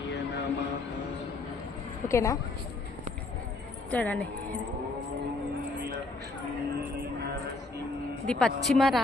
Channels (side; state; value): right; quieter; 3.4 dB